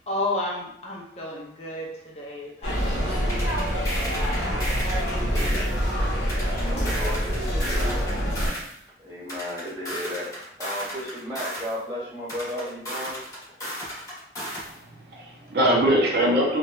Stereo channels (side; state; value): both; normal; correlation 0.50